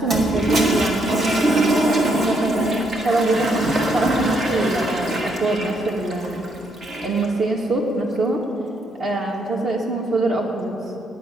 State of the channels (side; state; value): both; normal; correlation 0.74